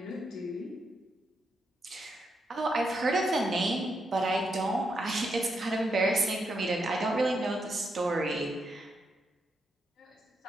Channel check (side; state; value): both; normal; correlation 0.81